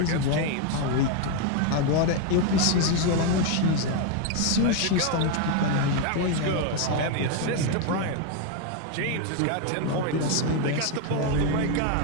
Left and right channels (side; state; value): both; different; correlation 0.01